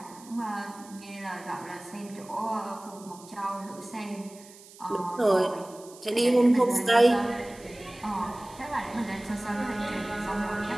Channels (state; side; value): noise; right; hiss, 21 dB below the sound